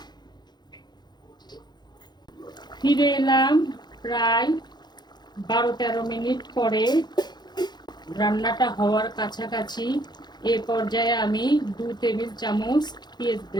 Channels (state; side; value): late; right; 0.21 ms